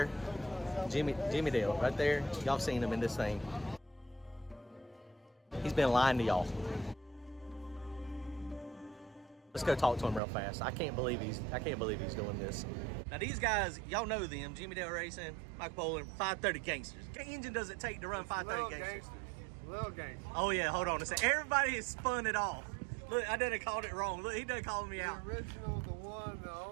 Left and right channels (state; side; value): drops out; left; at 10.2 s